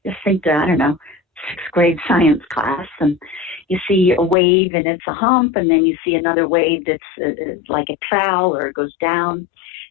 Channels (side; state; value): right; drops out; at 4.4 s